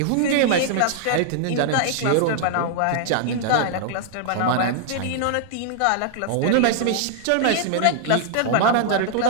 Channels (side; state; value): both; different; correlation -0.01